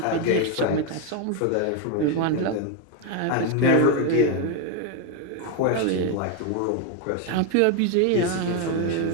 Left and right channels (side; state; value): both; different; correlation 0.01